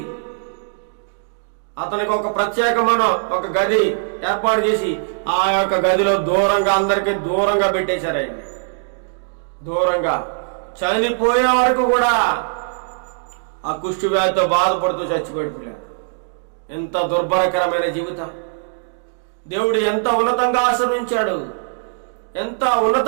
అతనికి ఒక ప్రత్యేకమైన ఒక గది ఏర్పాటు చేసి ఆ యొక్క గదిలో దూరంగా అందరికీ దూరంగా పెట్టేశారు. ఆయన దూరంగా చనిపోయే వరకు కూడా ఆ కుష్టు వ్యాధితో బాధపడుతూ చచ్చిపోయాడు. ఎంత దుర్భరకరమైన జీవితం! దేవుడు ఎంత ఉన్నతంగా ఆశీర్వించాడు, ఎంత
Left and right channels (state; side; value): silent; left; digital silence